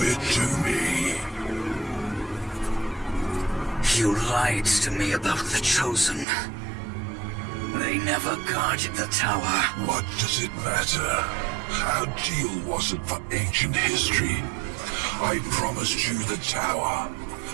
it to me. You lied to me about the Chosen. They never guarded the tower. What does it matter? Our deal wasn't for ancient history. I promised you the tower,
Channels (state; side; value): drops out; left; at 6.2 s